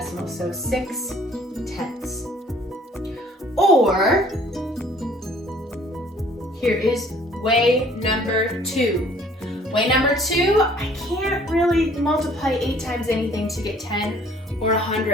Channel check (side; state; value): both; normal; correlation 0.56